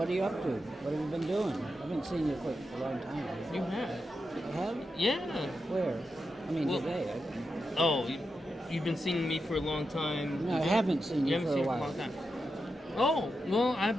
you up to? What have you been doing? I haven't seen you for a long time. You have? You have? Yeah. Where? I mean, Well, today. Oh, you've been seeing me for a long time. No, I haven't seen you haven't for seen a me while. long time. Oh, well, I've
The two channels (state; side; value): normal; both; correlation 0.88